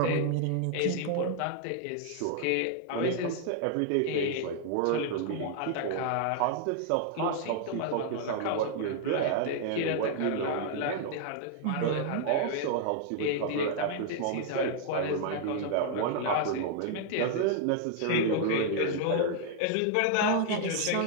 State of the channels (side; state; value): both; different; correlation 0.00